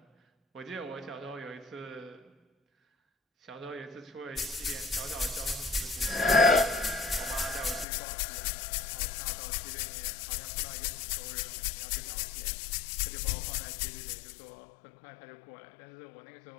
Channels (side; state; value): right; drops out; at 7.9 s